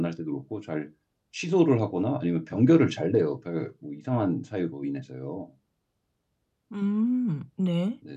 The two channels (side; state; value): both; identical; correlation 1.00